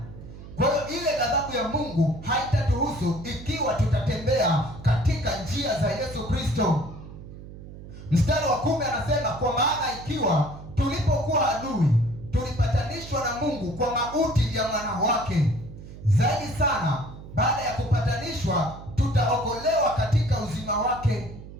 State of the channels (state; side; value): noise; right; hum, 14 dB below the sound